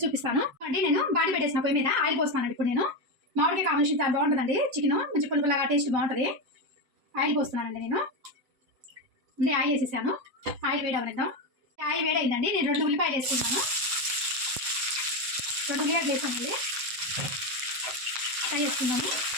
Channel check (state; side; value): late; left; 7.8 ms